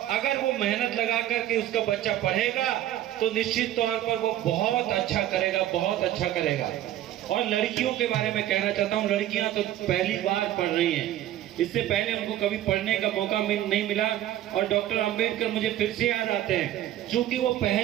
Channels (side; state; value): left; quieter; 12.9 dB